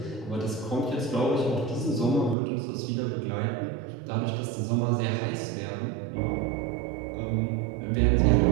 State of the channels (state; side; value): drops out; left; at 2.4 s